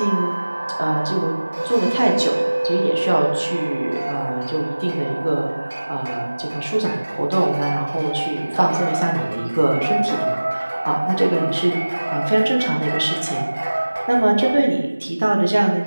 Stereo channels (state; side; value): inverted; both; correlation -1.00